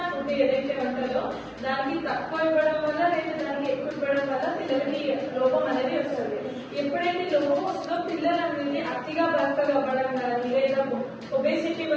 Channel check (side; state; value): both; identical; correlation 1.00